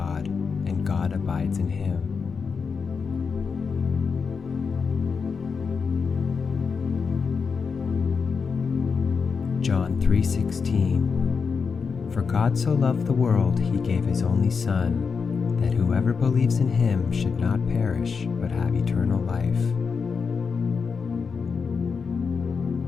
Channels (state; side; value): quieter; right; 5.5 dB